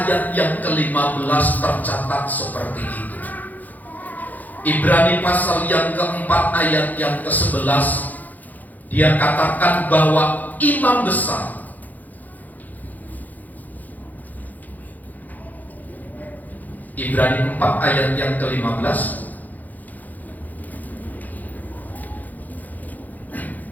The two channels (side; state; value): right; late; 0.082 ms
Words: yang ke-15 tercatat seperti itu. Ibrani pasal yang keempat ayat yang ke-11, dia katakan bahwa imam besar Ibrani 4 ayat yang ke-15.